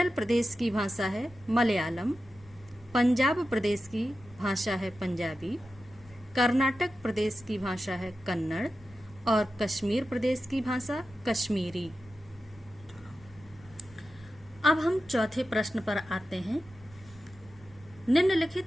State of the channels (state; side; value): noise; right; rumble, 23 dB below the sound